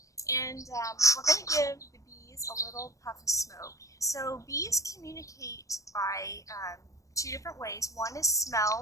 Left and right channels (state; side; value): late; right; 0.16 ms